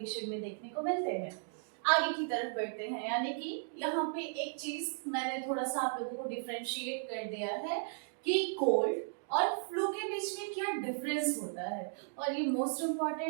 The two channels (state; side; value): silent; left; digital silence